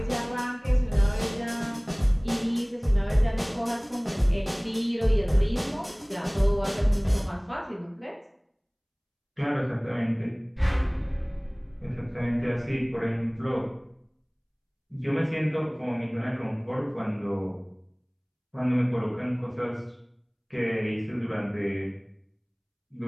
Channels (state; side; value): identical; both; correlation 1.00